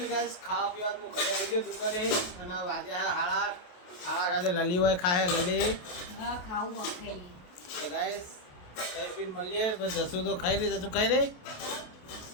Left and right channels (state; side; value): late; right; 28 ms